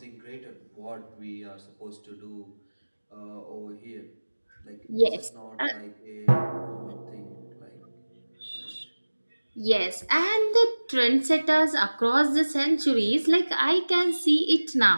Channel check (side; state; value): both; inverted; correlation -1.00